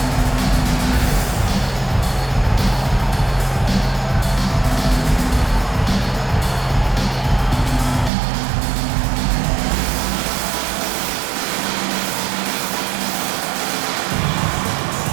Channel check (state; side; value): drops out; left; at 8.1 s